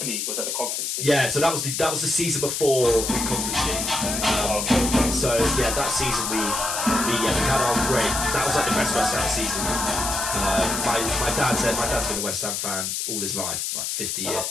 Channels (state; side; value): noise; left; hiss, 2 dB below the sound